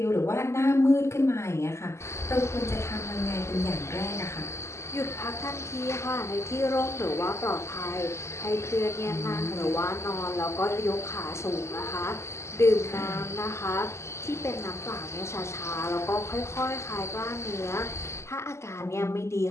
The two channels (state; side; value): late; right; 0.13 ms